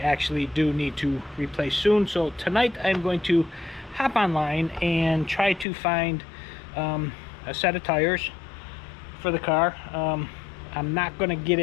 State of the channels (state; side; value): drops out; right; at 5.7 s